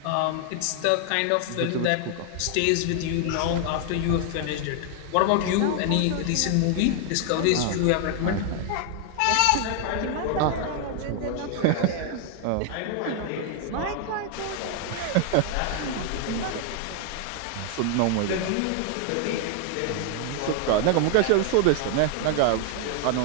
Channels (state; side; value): different; both; correlation 0.00